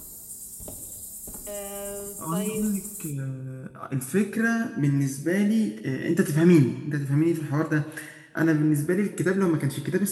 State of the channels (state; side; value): identical; both; correlation 1.00